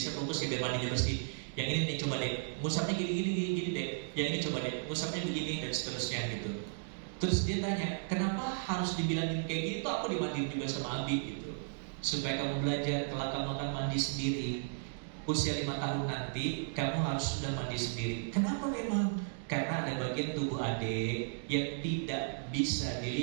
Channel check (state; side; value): silent; left; digital silence